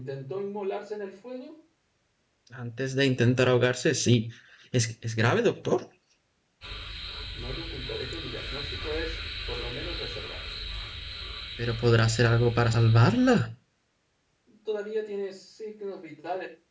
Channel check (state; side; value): identical; both; correlation 1.00